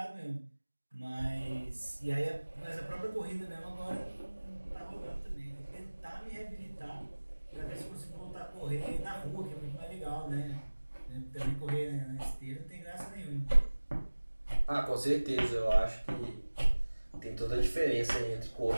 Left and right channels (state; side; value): inverted; both; correlation -1.00